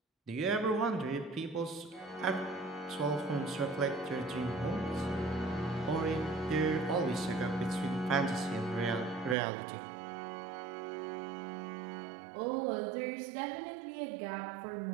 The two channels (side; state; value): left; drops out; at 9.3 s